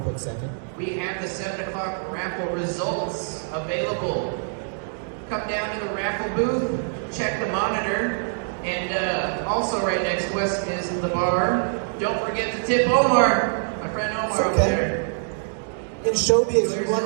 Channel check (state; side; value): silent; left; digital silence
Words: quick second. We have the 7 o'clock raffle results available. Come down to the raffle booth, check the monitor, and also right next to us is the bar. Don't forget to tip Omar, my friend Omar over there. In showbiz, you